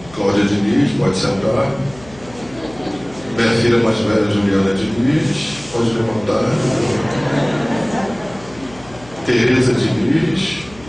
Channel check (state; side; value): noise; left; hum, 22 dB below the sound